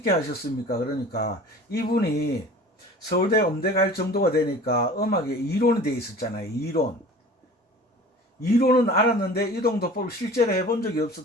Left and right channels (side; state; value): both; normal; correlation 0.42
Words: 하셨습니까? 그러니까 이분이 서울대 음대 갈 정도가 되니까 음악에 이론이 돼 있었잖아요. 이론은 알았는데 이동도법을 실제로 해본 적이